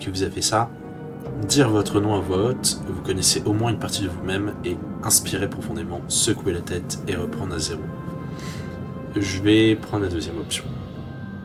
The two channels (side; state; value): both; identical; correlation 1.00